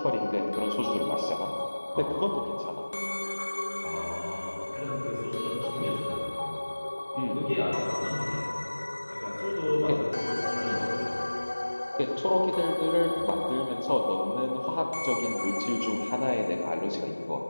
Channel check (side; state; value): both; inverted; correlation -1.00